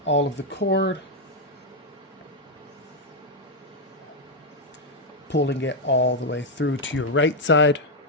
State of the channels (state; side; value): normal; both; correlation 0.00